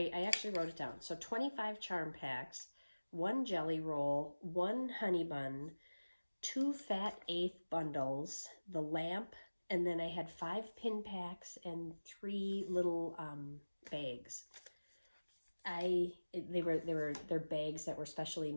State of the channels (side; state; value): both; inverted; correlation -1.00